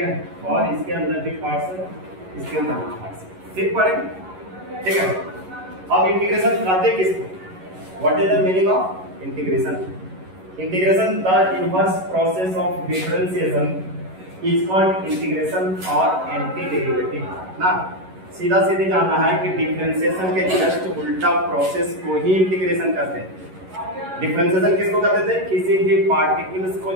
और इसके अंदर भी पार्ट्स है, इसके अंदर भी पार्ट्स सिर्फ पढ़ेंगे। ठीक है, अब इंटीग्रेशन कहते किसको? What is the meaning of integration? Integration the inverse process of differentiation is called integration और एंटी डेरिवेटिव ना। सीधा सीधी जानना है कि डिफरेंशिएशन के जस्ट उल्टा प्रोसेस को ही इंटीग्रेशन कहते हैं। डिफरेंशिएशन किसको कहते थे? किसी भी पार्टिकल्स को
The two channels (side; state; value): left; late; 11 ms